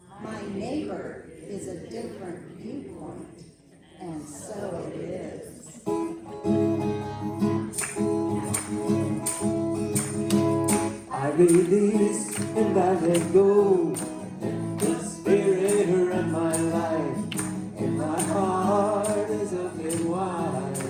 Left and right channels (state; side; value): identical; both; correlation 1.00